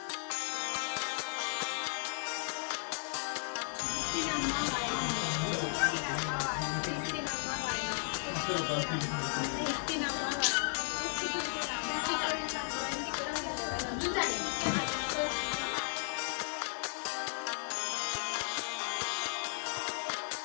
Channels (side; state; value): right; silent; digital silence